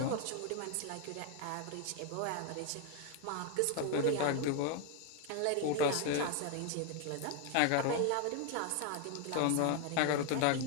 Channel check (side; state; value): both; different; correlation 0.01